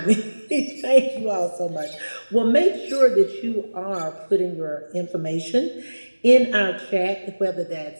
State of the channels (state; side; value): inverted; both; correlation -1.00